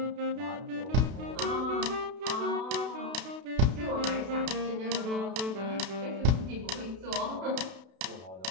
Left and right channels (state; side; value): late; left; 32 ms